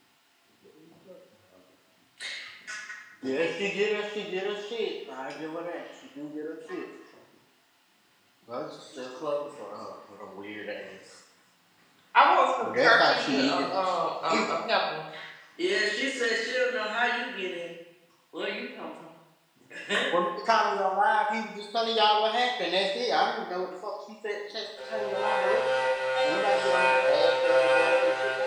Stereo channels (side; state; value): both; identical; correlation 1.00